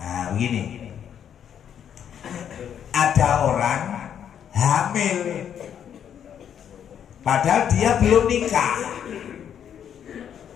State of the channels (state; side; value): quieter; right; 8.9 dB